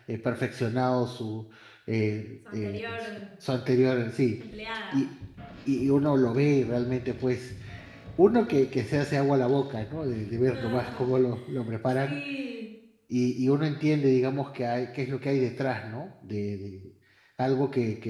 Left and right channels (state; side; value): identical; both; correlation 1.00